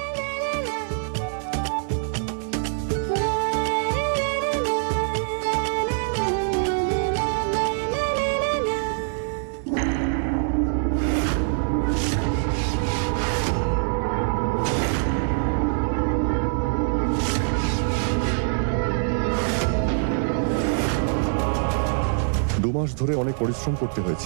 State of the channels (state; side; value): silent; left; 60 dB below the other